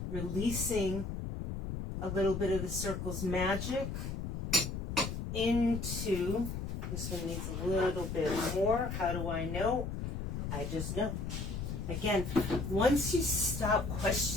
releasing a little bit of the circle's magic into, this one needs a little bit more. How do I know? I just know. Again, once you stop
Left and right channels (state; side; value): noise; left; rumble, 4 dB below the sound